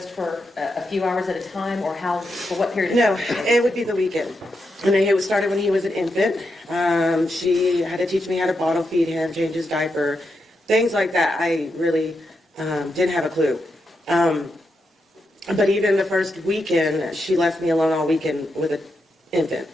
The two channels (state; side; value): normal; both; correlation 0.84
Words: for a few hours at a time, or for what period of No, time? it would be the weekend. And it started when he was an infant. She had to teach me how to bottle feed him, change his diaper, things like that. I really didn't have a clue. But even the first weekend, she left me alone all weekend with an infant.